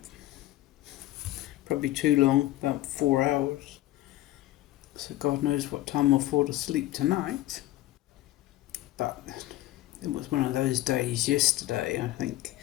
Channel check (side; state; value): right; quieter; 15.6 dB